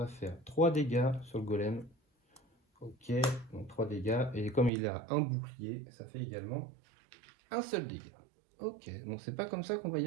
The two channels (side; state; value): left; drops out; at 4.7 s